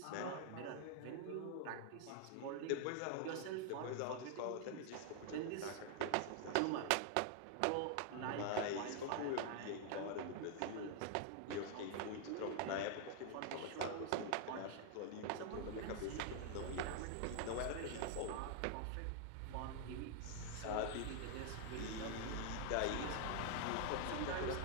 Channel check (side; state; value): both; different; correlation 0.00